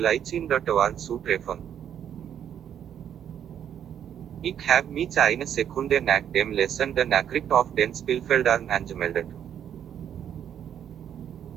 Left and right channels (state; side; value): quieter; left; 9.3 dB